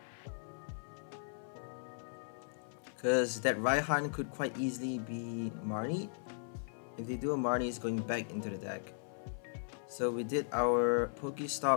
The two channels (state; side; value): silent; right; 53 dB below the other